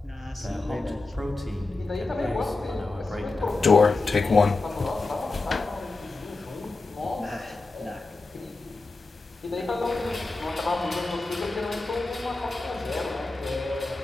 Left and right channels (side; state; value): right; quieter; 3.4 dB